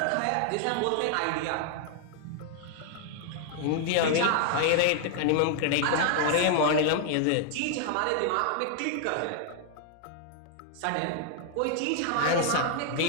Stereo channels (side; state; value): both; different; correlation 0.00